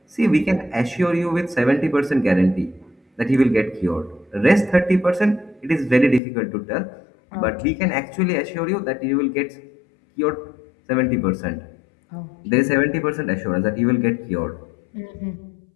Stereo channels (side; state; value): right; drops out; at 6.2 s